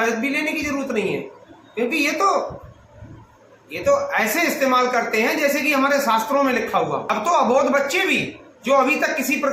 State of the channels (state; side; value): identical; both; correlation 1.00